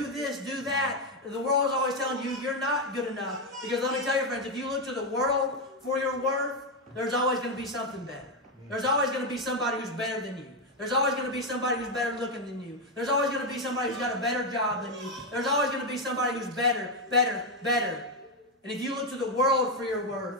this, do that. The world is always telling you you're not good enough. Because let me tell you, friends, if you look to the world for your worth, there's always going to be something better. There's always going to be somebody who's better than you. There's always going to be somebody who's better looking than you. There's always going to be somebody who's got a better job than you. There's always going to be somebody who's better. And if you look to the world for your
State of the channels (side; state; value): both; normal; correlation 0.06